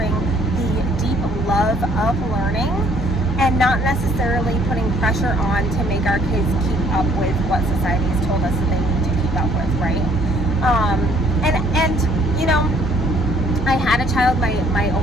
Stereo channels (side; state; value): both; normal; correlation 0.61